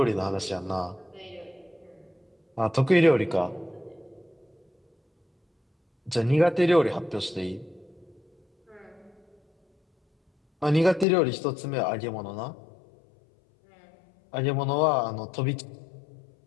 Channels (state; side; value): drops out; right; at 11.1 s